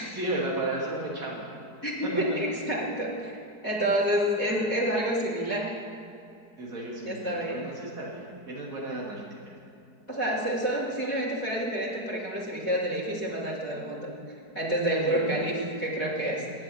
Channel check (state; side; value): late; right; 4.7 ms